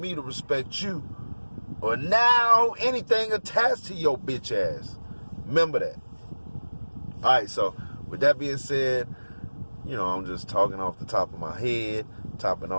to respect you. Or now anything attached to your bitch ass. Remember that. Alright, so with that being said, I'm just talking off the top of my head. Topping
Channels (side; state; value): both; inverted; correlation -1.00